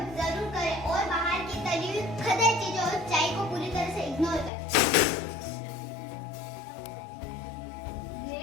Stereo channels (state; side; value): drops out; right; at 4.5 s